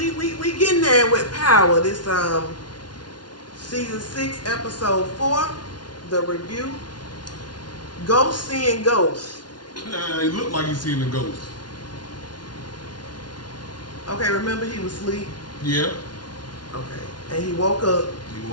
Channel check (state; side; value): late; right; 0.70 ms